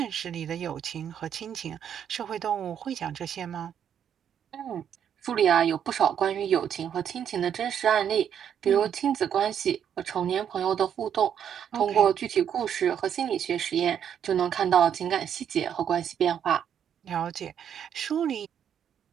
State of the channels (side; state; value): left; quieter; 8.8 dB